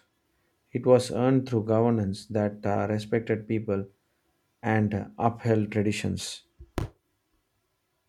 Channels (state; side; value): identical; both; correlation 1.00